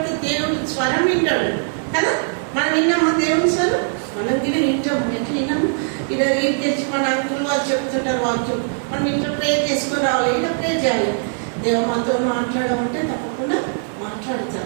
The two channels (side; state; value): left; silent; 56 dB below the other